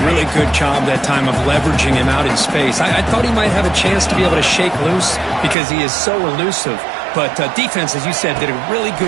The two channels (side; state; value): left; drops out; at 5.6 s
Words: really good job that time of leveraging him out in space. I thought he might have a chance to be able to shake loose because he is so elusive. But defense, as you said, did a really